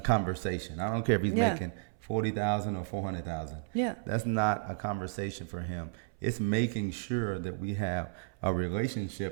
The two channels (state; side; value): silent; left; 56 dB below the other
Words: I don't care if he's Yeah. making 40,000 or 400,000. Yeah. That's not a conversation for him. It's making sure that we have a